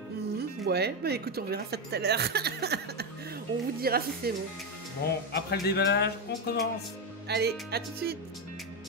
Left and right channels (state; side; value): normal; both; correlation 0.10